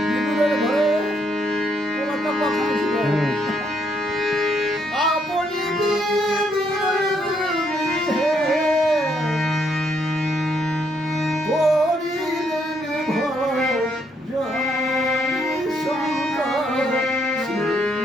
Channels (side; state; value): both; normal; correlation 0.73